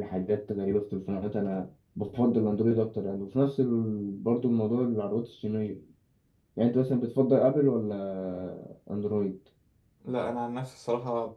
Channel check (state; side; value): identical; both; correlation 1.00